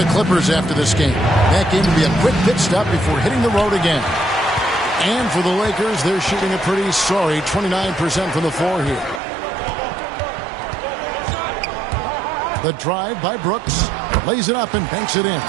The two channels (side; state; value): left; drops out; at 9.2 s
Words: Clippers after this game. That game will be a quick pit stop before hitting the road again. And for the Lakers, they're shooting a pretty sorry 29% from the floor here. The drive by Brooks. Lays it up and banks it in.